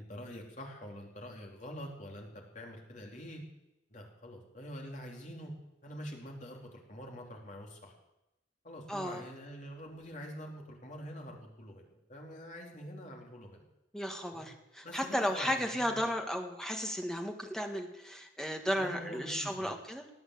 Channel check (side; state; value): both; normal; correlation 0.79